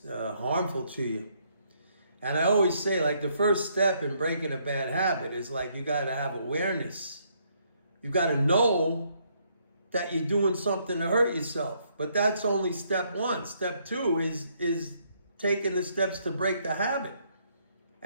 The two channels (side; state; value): both; inverted; correlation -0.71